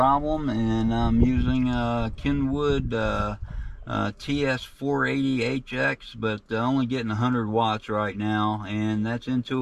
And I'm using Kenwood TS480HX, but only getting 100 watts right now. And that's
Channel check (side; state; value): both; identical; correlation 1.00